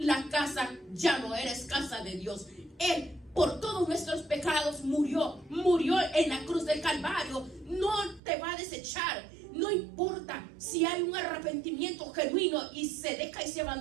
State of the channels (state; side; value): drops out; left; at 8.2 s